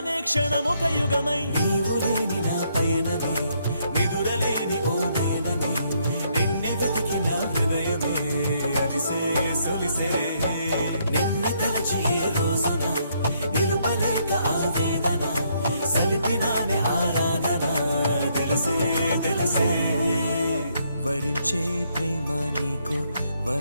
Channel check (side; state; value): both; inverted; correlation -0.72